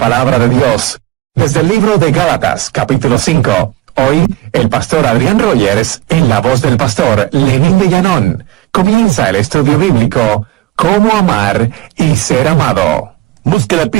de Dios. Desde el libro de Gálatas, capítulo 5. Hoy, el pastor Adrián Rogers, en la voz del pastor Lenín de Llanón, comienza el estudio bíblico Cómo amar y ser amado. Busque la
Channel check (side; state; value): left; quieter; 16.4 dB